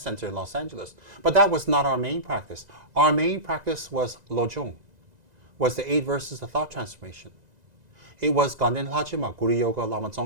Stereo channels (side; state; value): left; late; 2.0 ms